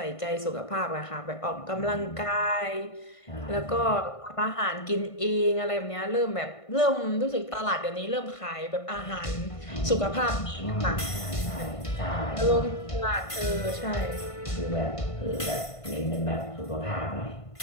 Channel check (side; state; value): right; late; 1.5 ms